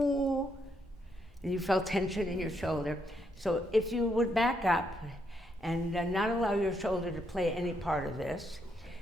and you felt tension in your shoulder. So if you would back up and not allow your shoulder to play any part of this,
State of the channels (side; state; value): both; normal; correlation 0.77